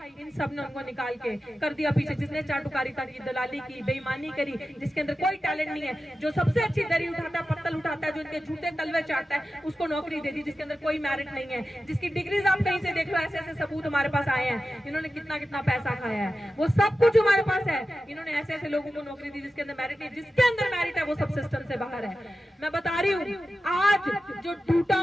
इन सब ने उनको निकाल के कर दिया पीछे। जिसने चाटुकारिता की, दलाली की, बेईमानी करी, जिसके अंदर कोई टैलेंट नहीं है, जो सबसे अच्छी दरी उठाता है, पत्तल उठाता है, जो इनके झूठे तलवे चाटता है, उसको नौकरी दे दी। जिसके अंदर कोई मेरिट नहीं है, जिसकी डिग्रीज आप कहीं से देख लो, ऐसे ऐसे सबूत हमारे पास आए हैं, इन्होंने कितना कितना पैसा खाया है, वो सब कुछ हमारे पास है। इन्होंने ऐसे ऐसे लोगों को नौकरी दी जिसके अंदर मेरिट नहीं, जिसके अंदर मेरिट है वो सब सिस्टम से बाहर है। मैं बता रही हूँ, आज जो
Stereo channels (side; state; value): both; normal; correlation 0.93